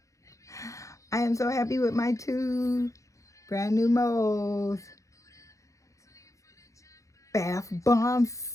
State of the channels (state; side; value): late; right; 0.15 ms